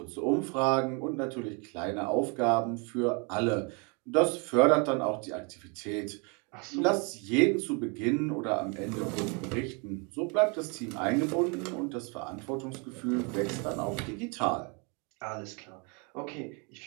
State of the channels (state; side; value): quieter; left; 32.4 dB